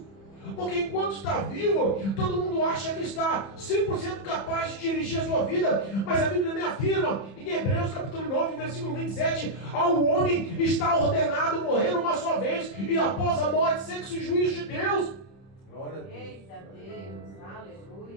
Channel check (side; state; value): right; late; 31 ms